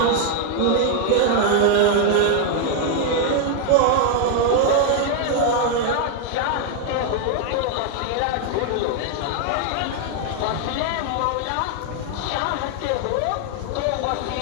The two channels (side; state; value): both; different; correlation 0.00